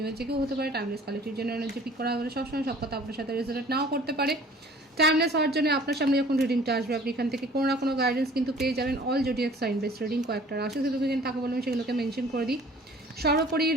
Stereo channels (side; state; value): both; normal; correlation 0.51